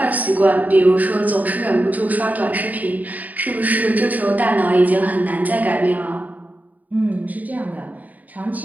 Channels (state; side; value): late; left; 0.077 ms